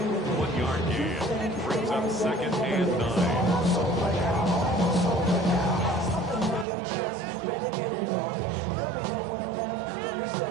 1 yard gain. Brings up 2nd and 9.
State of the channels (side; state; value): left; drops out; at 6.7 s